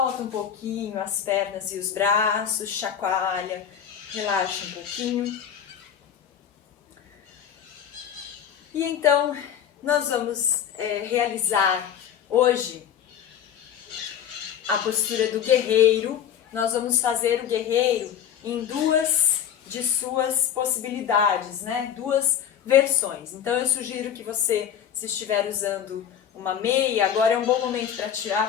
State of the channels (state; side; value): quieter; right; 9.0 dB